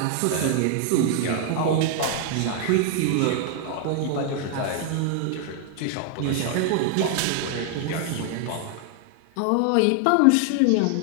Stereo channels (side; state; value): both; different; correlation 0.00